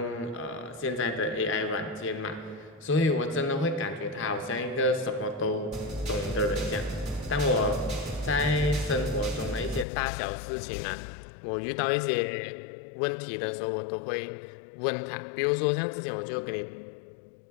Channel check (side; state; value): right; drops out; at 9.9 s